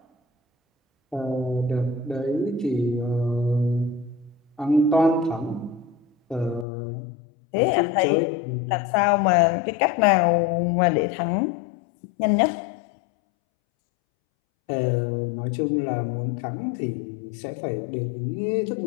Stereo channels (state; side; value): drops out; right; at 6.7 s